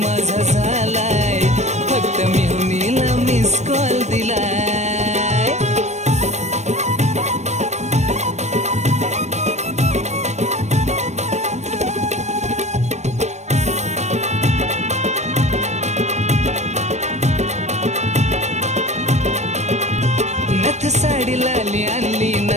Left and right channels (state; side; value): late; left; 0.33 ms